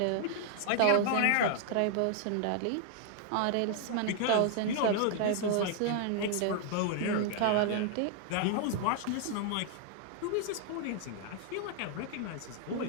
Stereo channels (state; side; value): different; both; correlation 0.00